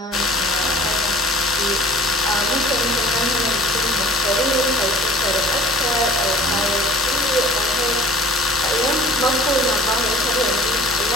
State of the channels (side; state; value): both; normal; correlation 0.44